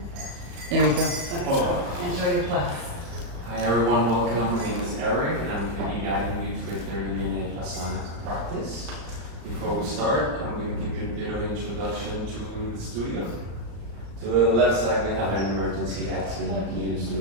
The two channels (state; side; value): late; left; 35 ms